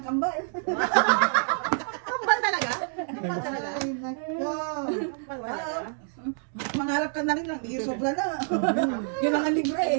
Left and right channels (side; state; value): left; silent; digital silence